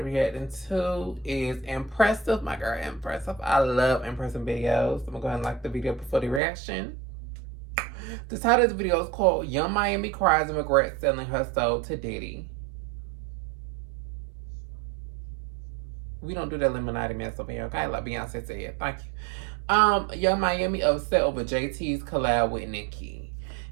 react into is Impressive. My girl, Impressive. I love impressive videos. I'm gonna go ahead and like the video before the reaction. The title of the video is called Young Miami Cries and Regrets Selling Her Soul to Diddy. We don't do that Illuminati mess over here, okay? Like Beyonce said. Thank you. Young Miami upset over JT's collab with Nicki.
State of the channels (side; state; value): left; drops out; at 6.4 s